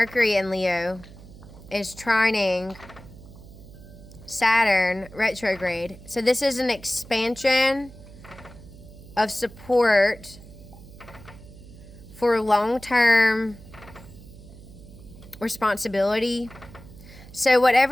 in Leo is trining Saturn retrograde. So this is an expansion of support for long-term responsibility. So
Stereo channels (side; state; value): right; noise; hum, 18 dB below the sound